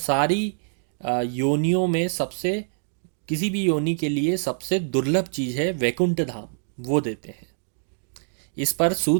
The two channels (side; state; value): left; silent; digital silence